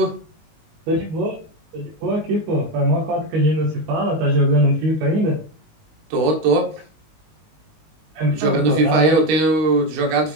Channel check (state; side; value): late; left; 19 ms